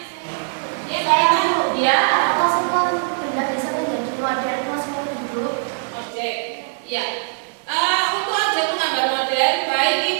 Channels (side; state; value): left; silent; 56 dB below the other